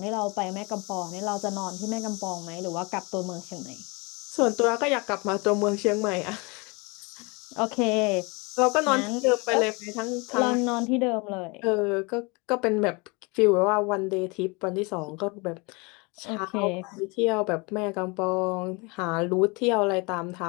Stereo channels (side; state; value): right; quieter; 28.4 dB